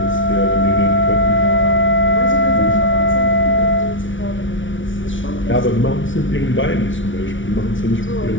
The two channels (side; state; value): right; late; 0.56 ms